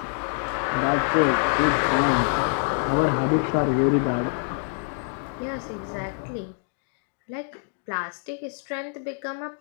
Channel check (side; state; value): right; silent; 56 dB below the other